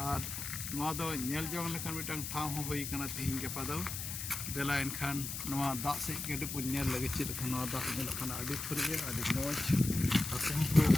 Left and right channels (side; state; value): left; noise; hiss, 5 dB below the sound